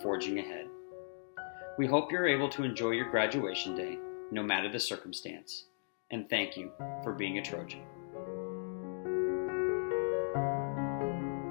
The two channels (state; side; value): silent; right; digital silence